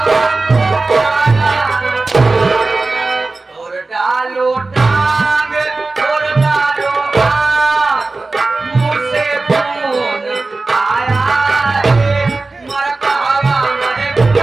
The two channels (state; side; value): quieter; left; 3.5 dB